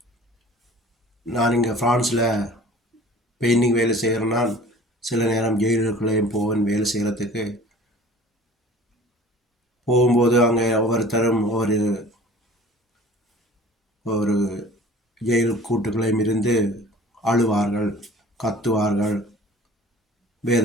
நான் இங்கே ஃப்ரான்ஸில் பெயிண்டிங் வேலை செய்கிறேன்னா சில நேரம் ஜெயிலுக்குள்ளேயும் போவேன் வேலை செய்கிறதுக்கு. போகும்போது அங்கே ஒவ்வொருத்தரும் ஒரு ஜெயில் கூட்டுகளையும் இருந்து அழுவார்கள், கத்துவார்கள்,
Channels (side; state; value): both; normal; correlation 0.46